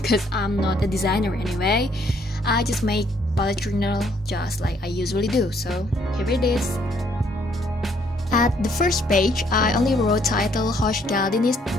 because I'm not a designer anyway. I just make bullet journal just like I usually do. So here it is. At the first page, I only wrote title Hoş geldiniz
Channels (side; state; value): both; normal; correlation 0.67